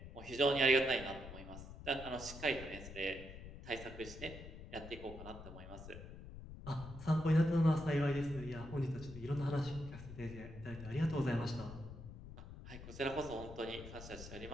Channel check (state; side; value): noise; left; rumble, 12 dB below the sound